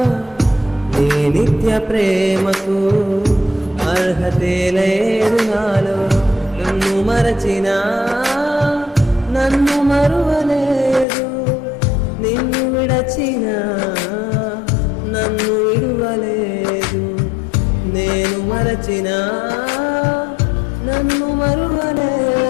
నీ నిత్య ప్రేమకు అర్హతే లేదు నాలో. నన్ను మరచినా నన్ను మరువలేదు, నిన్ను విడచినా నన్ను విడువలేదు. నేను మరచినా నన్ను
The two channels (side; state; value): right; drops out; at 11.1 s